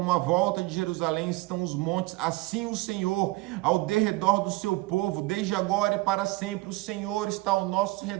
à volta de Jerusalém estão os montes, assim o Senhor ao derredor do seu povo, desde agora e para sempre. O Senhor está ao nosso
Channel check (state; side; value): quieter; left; 20.7 dB